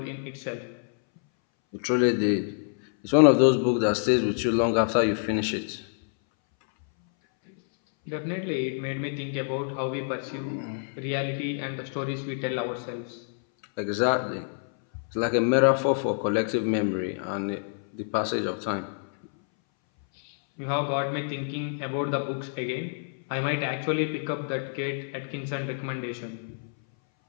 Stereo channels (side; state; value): right; silent; 60 dB below the other